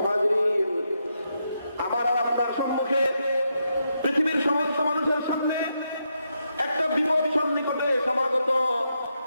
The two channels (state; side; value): inverted; both; correlation -0.82